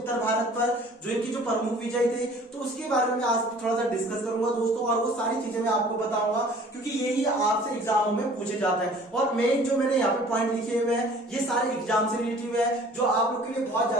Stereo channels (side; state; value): both; normal; correlation 0.50